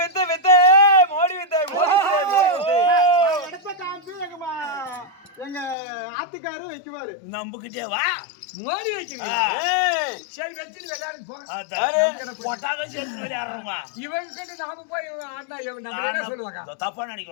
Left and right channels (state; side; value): drops out; right; at 5.8 s